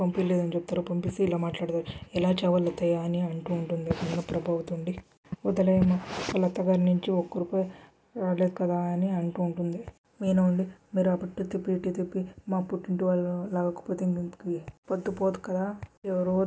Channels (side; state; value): both; identical; correlation 1.00